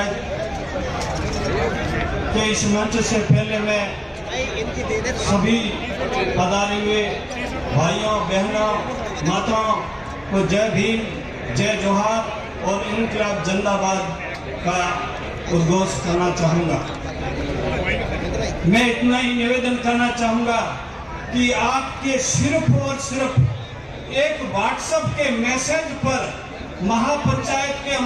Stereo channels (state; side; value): identical; both; correlation 1.00